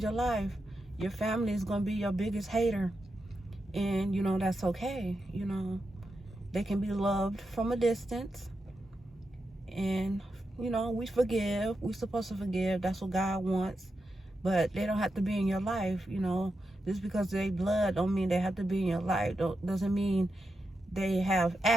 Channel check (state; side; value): normal; both; correlation 0.87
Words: your life. Your family is going to be your biggest hater, and, that's okay. They can be loved from a distance, and we forgive. We're supposed to forgive. That's what God wants. But they don't have to be in your life. Just because they blood don't mean they have to be in your life. Doesn't mean they have